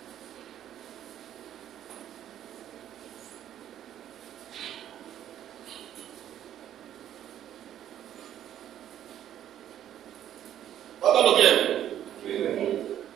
¿Cuánto lo tienen?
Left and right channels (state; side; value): quieter; left; 11.0 dB